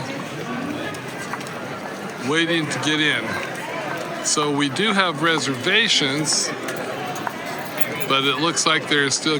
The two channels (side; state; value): both; identical; correlation 1.00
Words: waiting to get in. So we do have reservations, but it looks like there's still